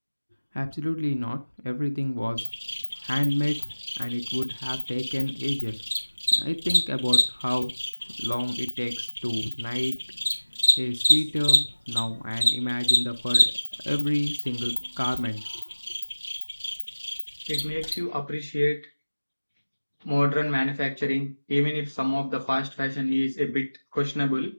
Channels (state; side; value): inverted; both; correlation -1.00